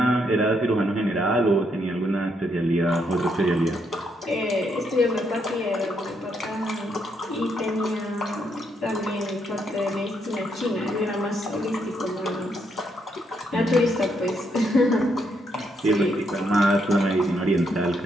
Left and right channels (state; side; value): normal; both; correlation 0.76